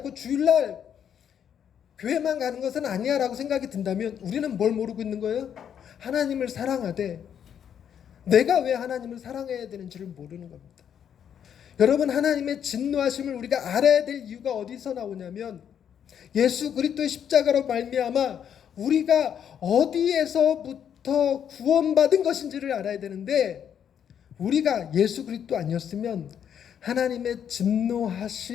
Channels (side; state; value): right; quieter; 8.7 dB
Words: 주일날 교회만 가는 것은 아니야 라고 생각이 든다면 우리는 뭘 모르고 있는 거예요? 하나님을 사랑하되 내가 왜 하나님을 사랑해야 되는지를 모르는 겁니다. 여러분, 하나님의 진노하심을 우리가 알아야 될 이유가 어디서 나오냐면 예수 그리스도의 십자가로 말미암아 우리가 어디에서부터 구원받은 것인지를 알아야 되는데, 우리가 예수 그리스도 아니었으면 하나님의